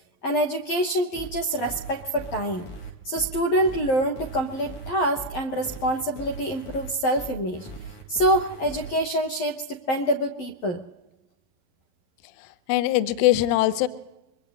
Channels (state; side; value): late; right; 11 ms